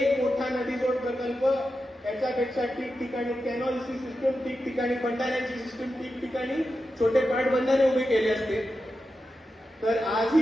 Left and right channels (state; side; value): normal; both; correlation 0.90